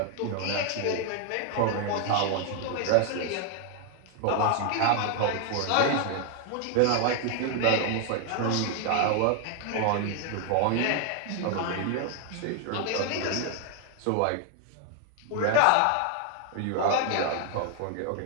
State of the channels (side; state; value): both; different; correlation 0.00